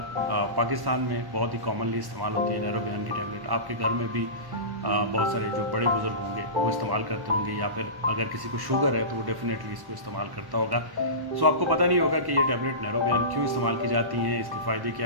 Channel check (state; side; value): late; left; 1.1 ms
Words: पाकिस्तान में बहुत ही कॉमनली इस्तेमाल होती है नैरोबियान की टैबलेट। आपके घर में भी बहुत सारे जो बड़े बुज़ुर्ग होंगे वो इस्तेमाल करते होंगे, या फिर अगर किसी को शुगर है तो वो डेफिनेटली इसको इस्तेमाल करता होगा। सो आपको पता नहीं होगा कि ये टैबलेट नैरोबियान क्यों इस्तेमाल की जाती हैं, इसके फ़ायदे